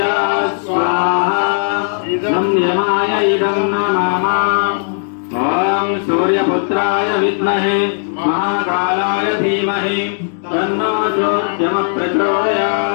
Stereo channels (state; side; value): silent; right; digital silence